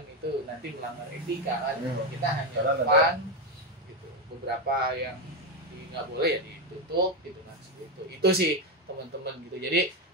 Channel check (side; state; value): both; normal; correlation 0.09